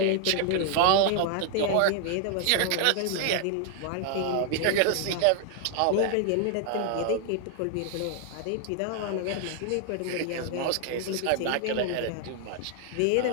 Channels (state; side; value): different; both; correlation 0.00